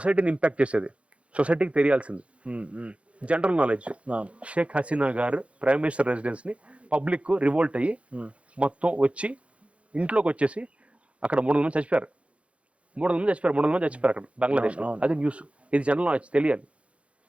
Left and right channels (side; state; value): left; late; 0.062 ms